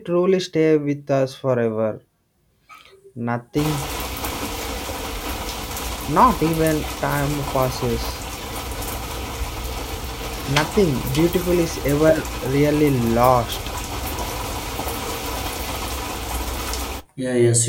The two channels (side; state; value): both; identical; correlation 1.00